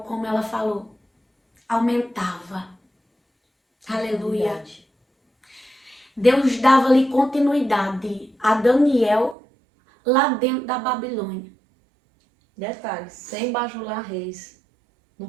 como ela falou, aumentava. Aleluia. Verdade. Deus dava-lhe continuidade a Daniel lá dentro da Babilônia. Detalhe, sem bajular reis. Não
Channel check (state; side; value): drops out; left; at 9.3 s